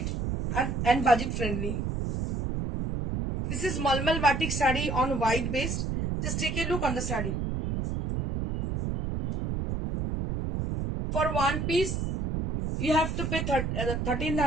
and budget friendly. This is Malmal batik saree on white base. Just take a look on the saree. For one piece, you have to pay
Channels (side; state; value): right; noise; rumble, 2 dB below the sound